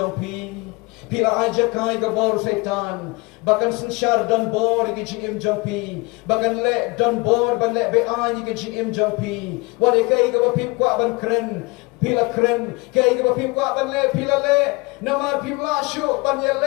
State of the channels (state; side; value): quieter; right; 25.9 dB